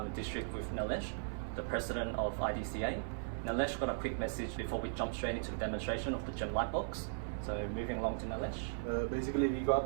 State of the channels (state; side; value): silent; left; 53 dB below the other